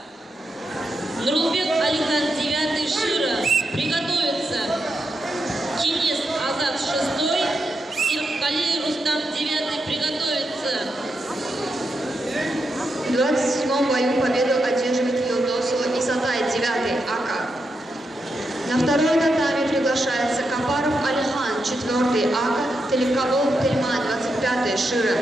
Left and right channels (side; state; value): both; normal; correlation 0.85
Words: Нурлбек Алихан, 9-й, Шира. Приготовиться. Кинес Азат, 6-й. Сиркали Рустам, 9-й, приготовиться. В 27-м бою победу одерживает Юлдосова Исатай, 9-й, Ака. На второй татами приглашается Капаров Алихан, 4-й, Ака, Телековалов Тельман, 25-й, Шира,